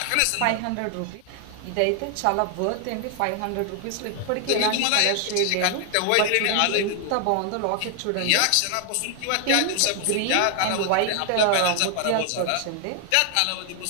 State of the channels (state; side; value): different; both; correlation 0.00